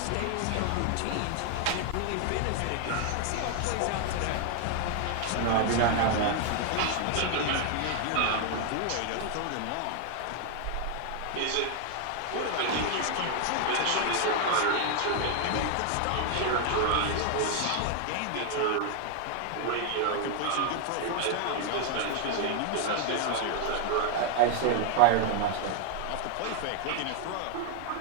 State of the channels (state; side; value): different; both; correlation 0.00